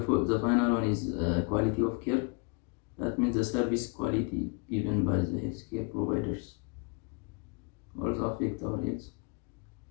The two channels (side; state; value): right; quieter; 33.0 dB